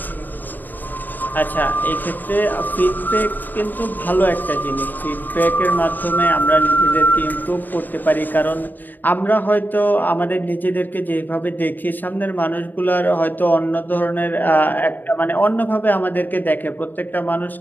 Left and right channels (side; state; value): right; late; 0.088 ms